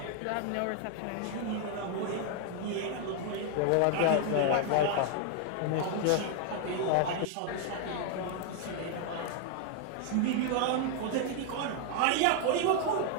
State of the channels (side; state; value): both; different; correlation 0.00